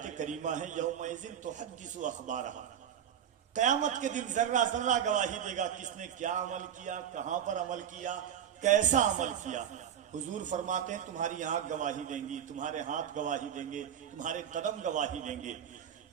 کریمہ ہے، یومئذ تحدث اخبارہا، قیامت کے دن ذرہ ذرہ گواہی دے گا کس نے کیا عمل کیا، کہاں پر عمل کیا، کیسا عمل کیا۔ حضور فرماتے ہیں تمہاری آنکھ گواہی دیں گی، تمہارے ہاتھ گواہی دیں گے، تمہارے قدم گواہی دیں گے۔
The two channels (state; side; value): quieter; left; 9.4 dB